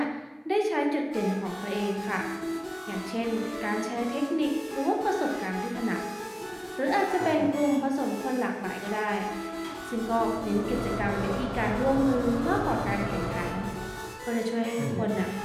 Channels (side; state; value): both; identical; correlation 1.00